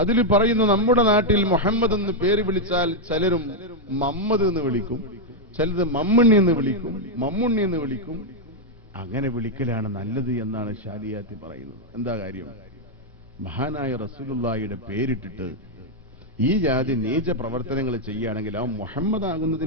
അതിൽ പറയുന്നു, നമ്മുടെ നാട്ടിൽ മുഹമ്മദ് എന്ന് പേര് വിളിച്ചാൽ ചിലരും മമ്മദ് എന്ന് വിളിക്കും, ചിലത് മമ്മണ്ണി എന്ന് വിളിക്കും, മമ്മുണ്ണി എന്ന് വിളിക്കും. അങ്ങനെ വിളിക്കലാണ് നല്ലത് എന്നാണ് ഷാലിയാത്തി പറയുന്നത്. എന്താ കാര്യം? മഹാനായ റസൂലുള്ളാഹിയുടെ പേരിട്ടിട്ട് ഈ ജാതി നീച പ്രവർത്തനങ്ങൾ ചെയ്യുകയാണെങ്കിൽ ആ മുഹമ്മദ്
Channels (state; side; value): normal; both; correlation 0.00